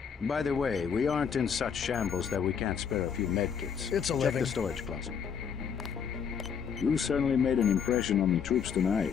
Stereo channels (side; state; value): right; quieter; 7.1 dB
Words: By the way, we aren't in such shambles that we can't spare a few medkits. It's a Check living. the storage closet. You certainly made an impression on the troops